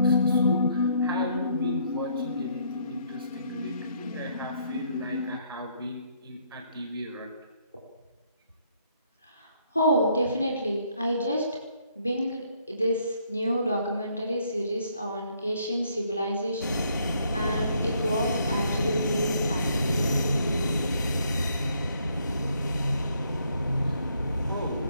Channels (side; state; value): both; inverted; correlation -0.69